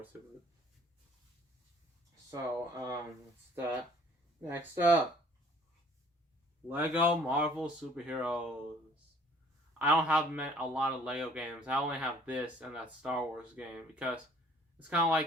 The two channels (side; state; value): both; normal; correlation 0.56